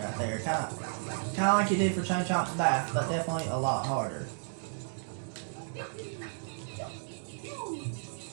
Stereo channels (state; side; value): silent; left; digital silence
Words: right there. Kind of like you did for Chain Chomp's bath, but definitely a lot harder.